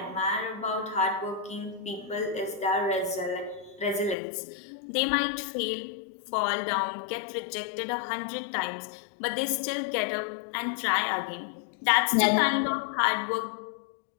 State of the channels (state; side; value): drops out; right; at 4.2 s